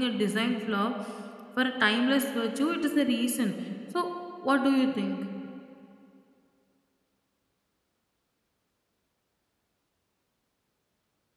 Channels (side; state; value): both; identical; correlation 1.00